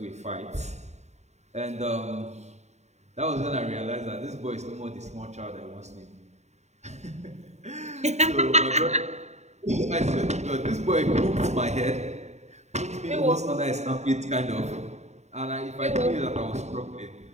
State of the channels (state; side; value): late; left; 0.33 ms